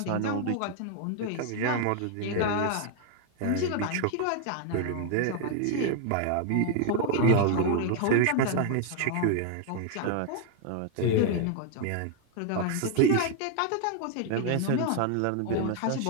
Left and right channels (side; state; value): both; different; correlation 0.00